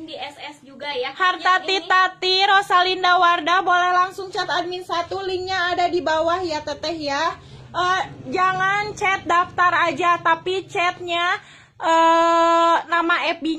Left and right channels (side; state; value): both; identical; correlation 1.00